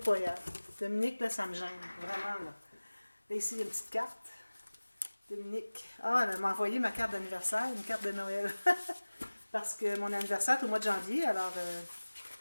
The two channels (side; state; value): both; inverted; correlation -1.00